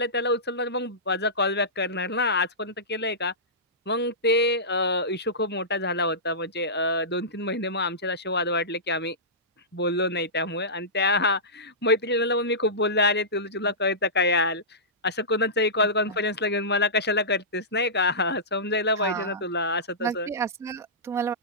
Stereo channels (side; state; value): both; normal; correlation -0.19